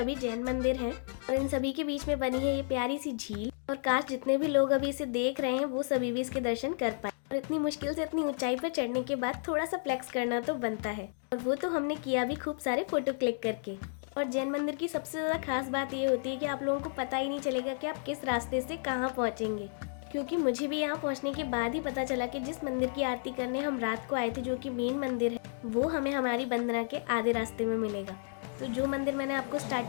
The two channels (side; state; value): right; silent; digital silence